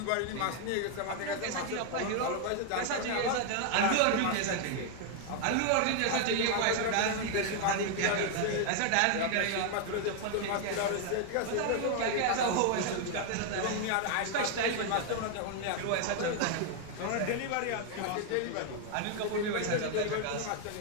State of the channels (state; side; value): different; both; correlation 0.00